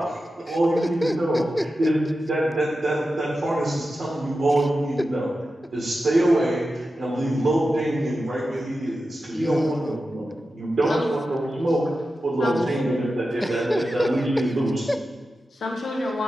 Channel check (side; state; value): both; normal; correlation 0.92